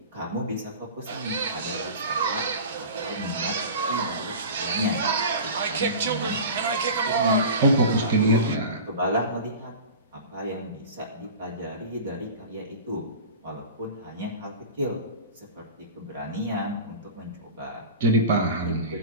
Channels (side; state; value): both; inverted; correlation -0.34